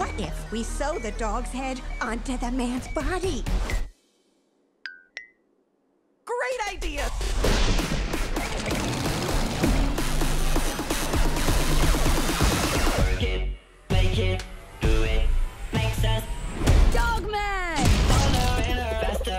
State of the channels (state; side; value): identical; both; correlation 1.00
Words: if we sew the dog's head onto the man's body? Great idea! Work it, make it, do it, makes sense. Dogman!